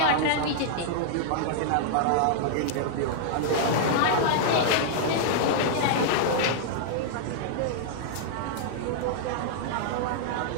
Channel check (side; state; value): both; different; correlation -0.01